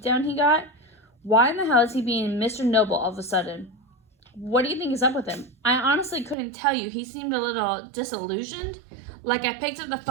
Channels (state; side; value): drops out; left; at 6.4 s